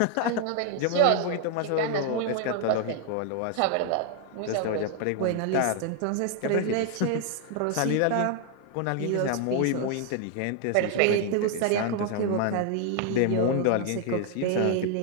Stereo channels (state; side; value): different; both; correlation 0.00